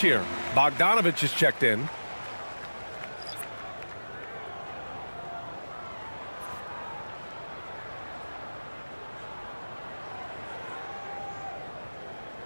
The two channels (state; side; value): inverted; both; correlation -1.00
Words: here. Bogdanovich is checked in.